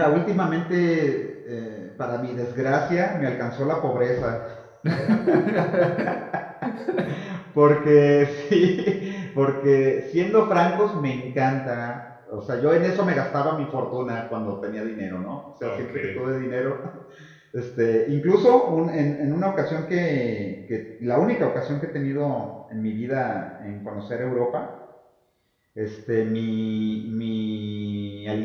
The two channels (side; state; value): both; identical; correlation 1.00